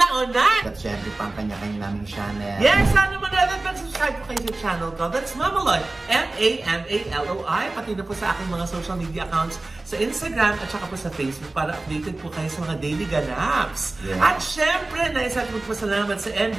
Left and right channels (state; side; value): quieter; left; 3.0 dB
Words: At syempre, pang kanya-kanya naming channel. Yes, sana manood at subscribe po kayo sa channel ko. That's Mama Loy, M-A-M-A-L-O-I. Pati na po sa aking mga social media accounts sa Instagram at saka po sa Facebook para updated po kayo sa mga daily ganaps. Yeah. At syempre, naisat po salamat sa MD